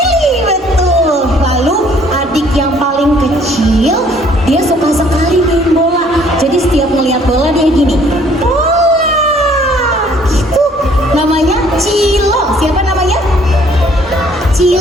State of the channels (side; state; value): both; normal; correlation 0.60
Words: betul. Lalu adik yang paling kecil, dia suka sekali main bola. Jadi setiap melihat bola dia gini, bola, gitu. Namanya Cilo. Siapa namanya?